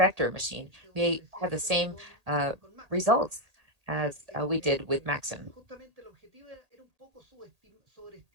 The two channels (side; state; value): left; late; 1.8 ms